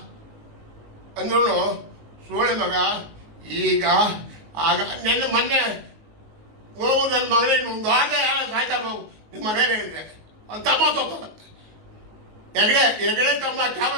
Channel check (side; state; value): left; late; 19 ms